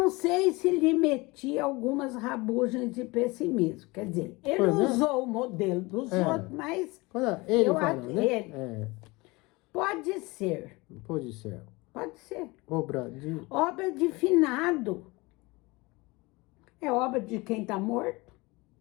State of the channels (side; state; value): right; quieter; 23.9 dB